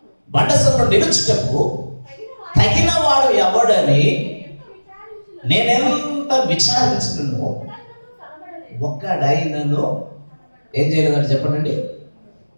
బండ సందులో నిలుచుటకు తగిన వాడు ఎవడని నేనెంత విచారించినను ఒక్కడైనను ఏం చేయలేదంటే చెప్పండి,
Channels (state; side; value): inverted; both; correlation -1.00